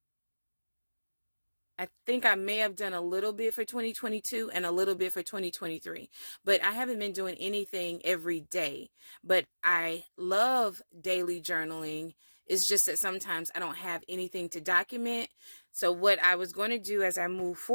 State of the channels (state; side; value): inverted; both; correlation -1.00